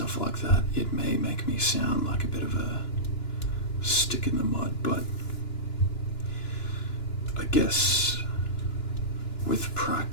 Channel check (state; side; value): late; right; 2.9 ms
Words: like that, it may make me sound like a bit of a stick in the mud, but I guess with